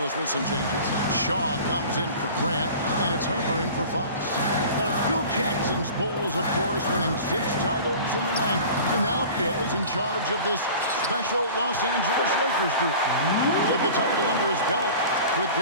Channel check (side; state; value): both; inverted; correlation -0.40